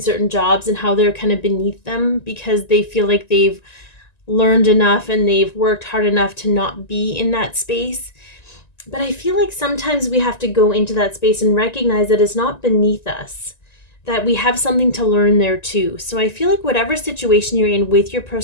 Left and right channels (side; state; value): right; late; 1.9 ms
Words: jobs and how they're kind of beneath them because they feel like they've learned enough and they've worked hard enough to not be in that space. But I feel like sometimes we have to go into that space and recognize that it's not beneath us, that we have something to learn there too. So I feel like whatever situation you're in with your